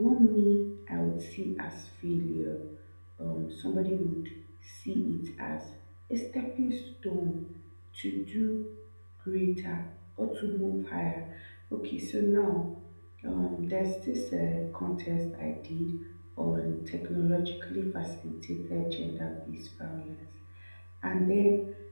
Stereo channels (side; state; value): both; inverted; correlation -1.00